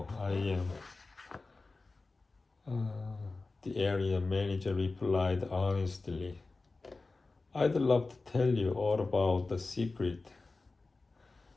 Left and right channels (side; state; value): right; quieter; 3.6 dB